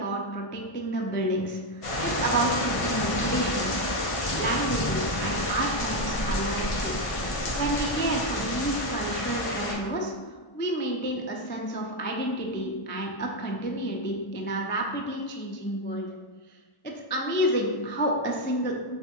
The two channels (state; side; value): late; right; 1.5 ms